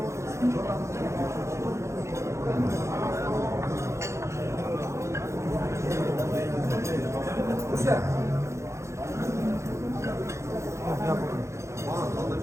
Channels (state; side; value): late; left; 0.14 ms